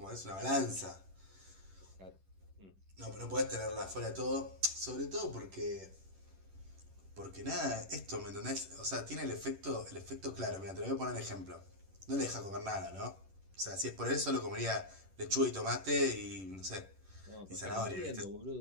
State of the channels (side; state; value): left; late; 11 ms